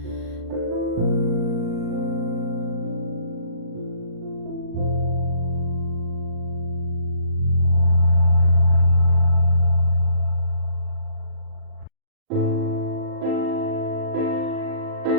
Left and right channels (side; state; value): left; late; 39 ms